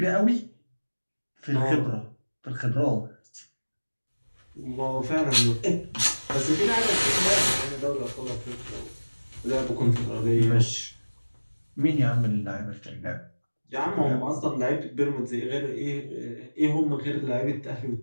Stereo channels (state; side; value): inverted; both; correlation -1.00